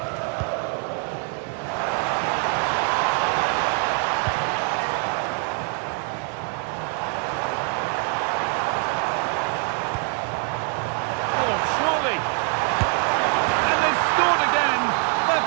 Oh, surely. And they've scored again. That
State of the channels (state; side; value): quieter; left; 37.6 dB